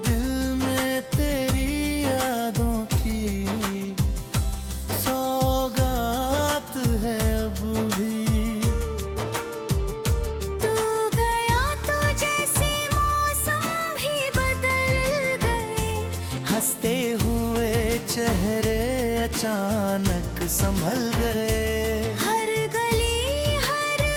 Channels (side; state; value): both; identical; correlation 1.00